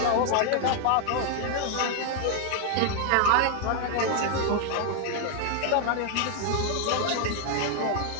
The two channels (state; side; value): different; both; correlation 0.00